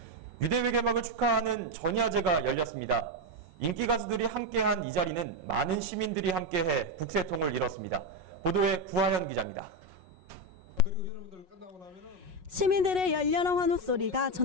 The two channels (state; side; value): late; left; 5.4 ms